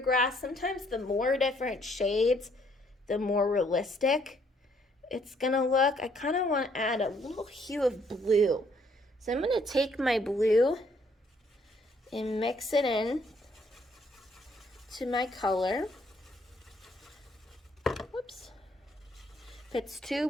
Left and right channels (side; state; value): both; normal; correlation 0.67